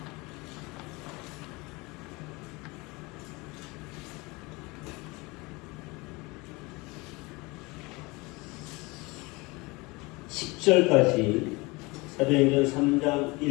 (10절까지) 사도행전 3장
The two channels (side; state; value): right; quieter; 24.8 dB